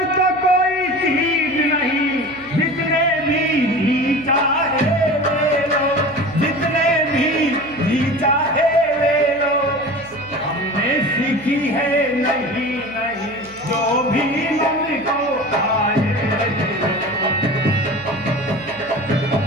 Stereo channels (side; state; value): right; noise; hum, 23 dB below the sound